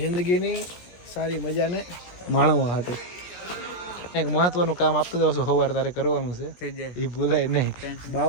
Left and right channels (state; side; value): late; right; 17 ms